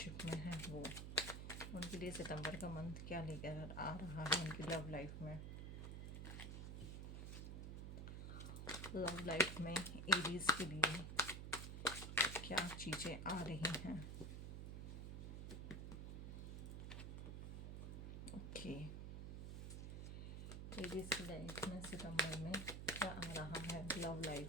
में हैं वो, उनके लिए सितंबर का मंथ क्या लेकर आ रहा है उनकी लव लाइफ में। लव लाइफ में एरीज के लिए क्या चीज़ें आ रही हैं। ओके, एरीज की लाइफ में सितंबर में क्या आ रहा है। Love life,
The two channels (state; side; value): noise; right; hum, 5 dB below the sound